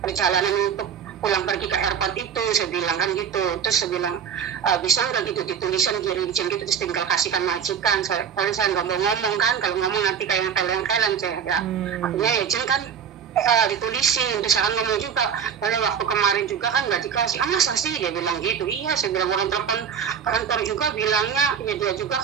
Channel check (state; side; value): quieter; left; 7.6 dB